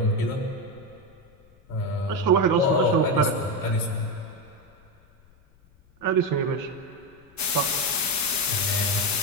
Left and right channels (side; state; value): left; noise; rumble, 29 dB below the sound